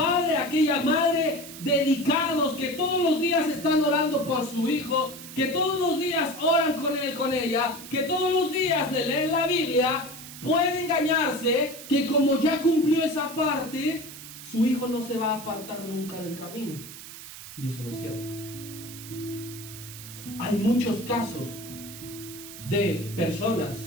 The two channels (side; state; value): right; noise; hiss, 14 dB below the sound